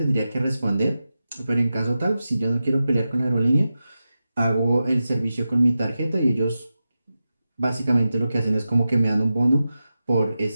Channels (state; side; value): inverted; both; correlation -0.92